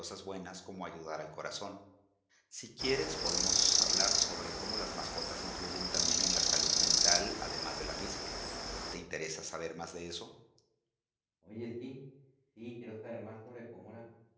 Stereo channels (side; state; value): both; identical; correlation 1.00